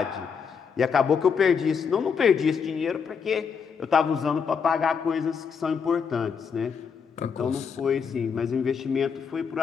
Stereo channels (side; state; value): right; quieter; 6.3 dB